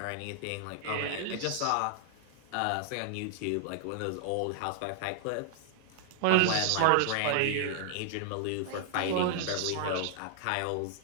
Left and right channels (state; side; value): different; both; correlation -0.01